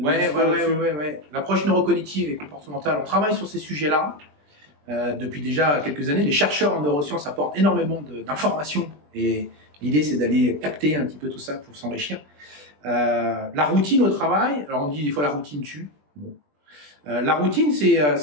L'approche neurocognitive et comportementale, on travaille sur ces sujets-là depuis déjà quelques années. Les chercheurs en neurosciences apportent énormément d'informations et l'idée c'est d'aller capter un petit peu tout ça pour s'enrichir. La routine au travail, alors on dit des fois la routine tue. Bon. La routine, c'est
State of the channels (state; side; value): late; left; 20 ms